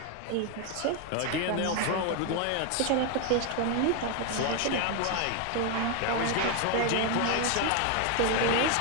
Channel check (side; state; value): both; different; correlation 0.01